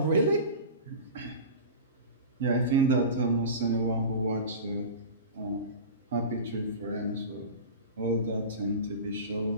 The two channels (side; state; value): both; inverted; correlation -0.32